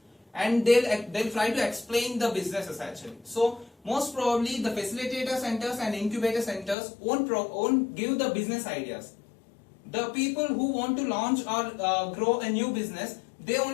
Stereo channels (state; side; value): drops out; right; at 6.8 s